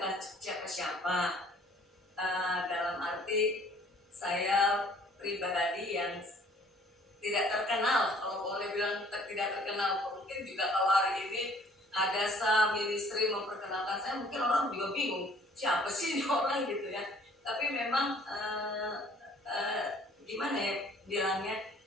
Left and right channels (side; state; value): both; normal; correlation 0.56